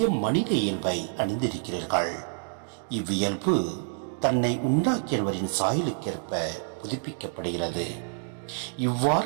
மனித இயல்பை அணிந்திருக்கிறீர்கள். இவ்வியல்பு தன்னை உண்டாக்கியவரின் சாயலுக்கேற்ப புதுப்பிக்கப்படுகிறது.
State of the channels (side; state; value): left; silent; digital silence